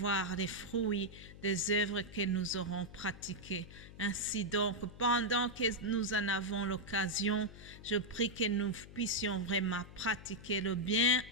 les fruits des œuvres que nous aurons pratiquées. Ainsi donc, pendant que nous en avons l'occasion, je prie que nous puissions vraiment pratiquer le bien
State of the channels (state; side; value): noise; left; hum, 16 dB below the sound